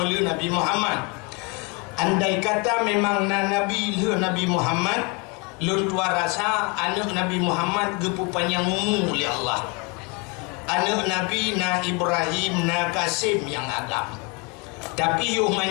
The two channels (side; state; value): right; quieter; 30.6 dB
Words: Nabi Muhammad. Andai kata memang nabi le Nabi Muhammad lun tua rasa anak Nabi Muhammad gepu panjang umur oleh Allah. Anak Nabi na Ibrahim na Kasim yang agam. Tapi yuh